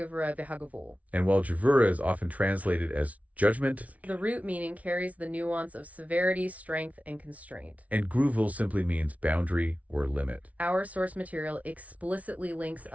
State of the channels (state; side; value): late; left; 0.068 ms